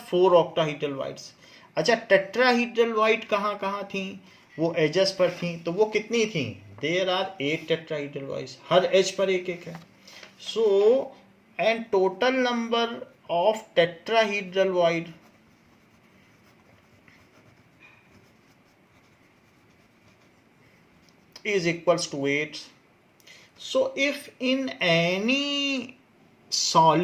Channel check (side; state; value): both; identical; correlation 1.00